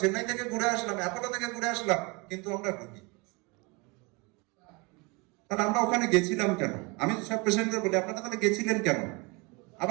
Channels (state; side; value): quieter; left; 28.1 dB